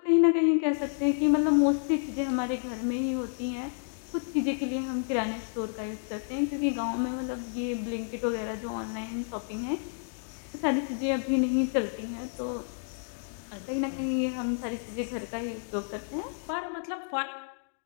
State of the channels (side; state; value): right; silent; digital silence